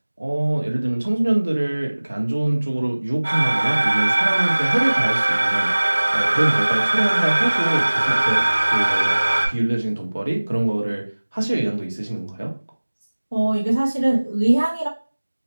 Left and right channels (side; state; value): both; inverted; correlation -1.00